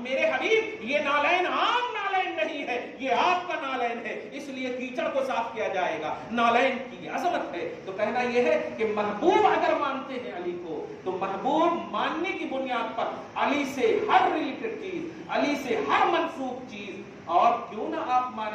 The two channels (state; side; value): identical; both; correlation 1.00